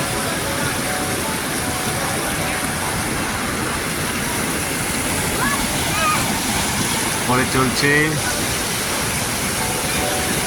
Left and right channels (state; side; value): identical; both; correlation 1.00